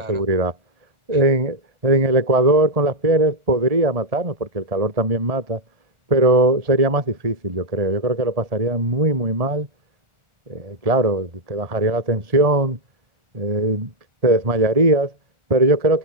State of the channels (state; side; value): late; left; 1.7 ms